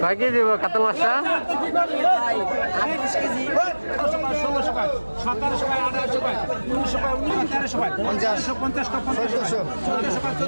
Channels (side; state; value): both; inverted; correlation -1.00